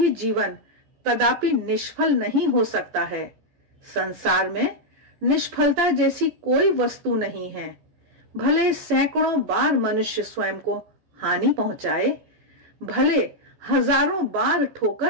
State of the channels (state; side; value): late; left; 14 ms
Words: जीवन कदापि निष्फल नहीं हो सकता है। संसार में निष्फलता जैसी कोई वस्तु नहीं है। भले सैकड़ों बार मनुष्य स्वयं को हानि पहुंचाए, भले हजारों बार